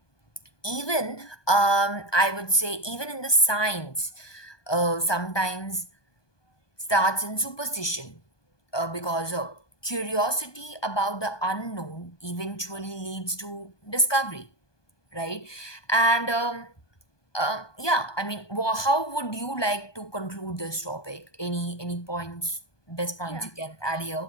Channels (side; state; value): right; late; 1.2 ms